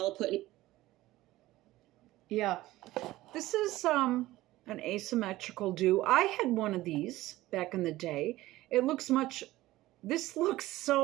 put in. Yeah. This is an asymmetrical do. I had one of these back in the day. It looks much, this looks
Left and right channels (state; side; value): quieter; left; 16.9 dB